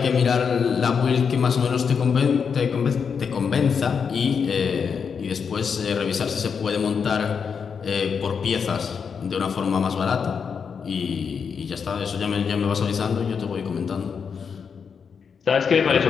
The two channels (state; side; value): quieter; right; 6.3 dB